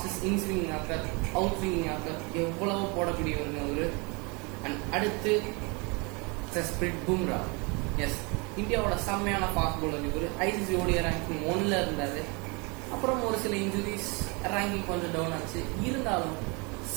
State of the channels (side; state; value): left; quieter; 30.2 dB